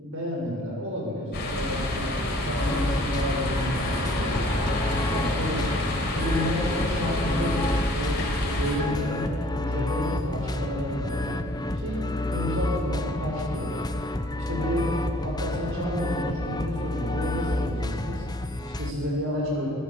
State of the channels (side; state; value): both; normal; correlation 0.57